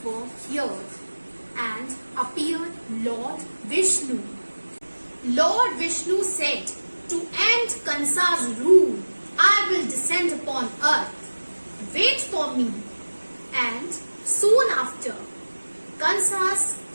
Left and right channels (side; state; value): both; inverted; correlation -1.00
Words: were heard and appeared Lord Vishnu. Lord Vishnu said, to end Kansa's rule, I will descend upon earth. Wait for me. And soon after, Kansa's